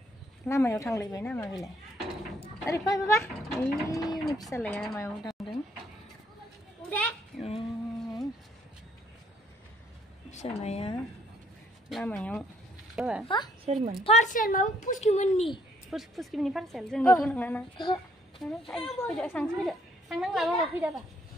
लामायाव थांलायबाय नामा बेलाय? अरे फै बाबा, ini फिसालाया मायाव थांदों? फिसालाया लामायाव बाबा सोरमोन? पार्सेल माबा पुस्किमोननि पार्सेल जोंनिथ' नङा ना। फैदो सांसो फैदो, थांनांला बाबा, फैदाबा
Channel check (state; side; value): normal; both; correlation 0.67